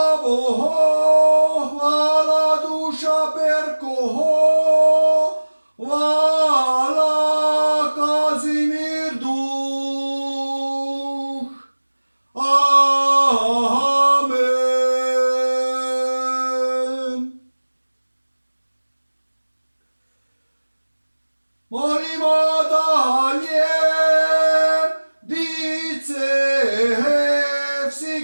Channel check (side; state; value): both; inverted; correlation -1.00